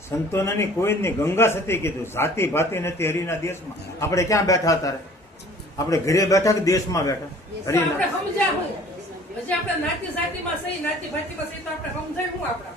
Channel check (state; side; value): normal; both; correlation 0.50